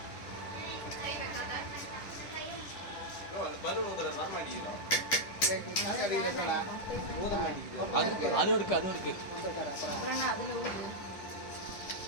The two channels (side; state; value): right; late; 10 ms